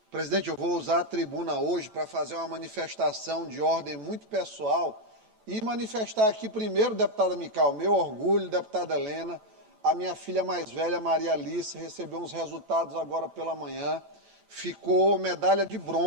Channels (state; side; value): late; left; 8.9 ms